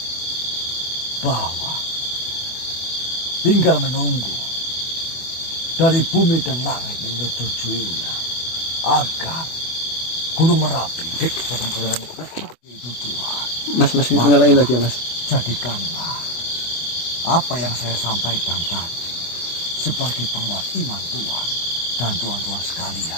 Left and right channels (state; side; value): late; right; 24 ms